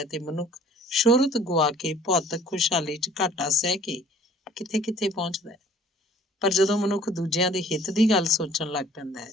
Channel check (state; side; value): normal; both; correlation 0.53